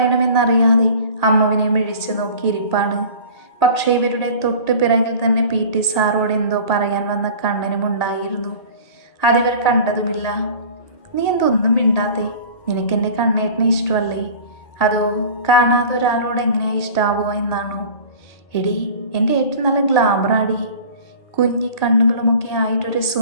അമ്മുവിനെ മിഴിച്ചു നോക്കിയിരിപ്പാണ്. പക്ഷേ ഇവരുടെ തൊട്ട് പിറകിൽ തന്നെ PT സാറോട് എന്തോ പറയാൻ വന്ന കണ്ണനും ഉണ്ടായിരുന്നു. അതിവർ കണ്ടതുമില്ല. നീ എന്തൊന്നും മിണ്ടാത്തേ? നിനക്കെൻ്റെ കണ്ണേട്ടനെ ഇഷ്ടമല്ലേ? അതോ കാണാതെ ഒരാളോട് എങ്ങനെയാ ഇഷ്ടാവുക എന്നാണോ? എടി, എൻ്റെ ഏട്ടൻ നല്ല ഗ്ലാമറാടി. കുഞ്ഞി കണ്ണുകളുമൊക്കെ ആയിട്ടൊരു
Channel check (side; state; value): right; late; 1.8 ms